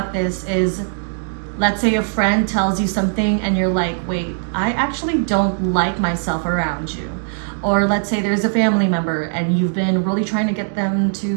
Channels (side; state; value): left; silent; digital silence